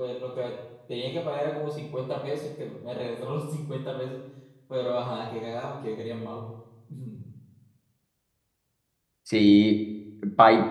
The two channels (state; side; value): identical; both; correlation 1.00